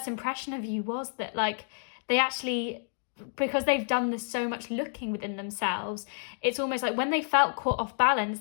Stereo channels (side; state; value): right; silent; digital silence